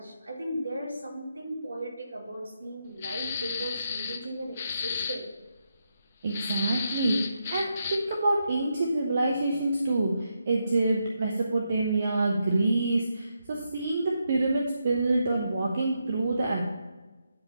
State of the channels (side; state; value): both; inverted; correlation -0.82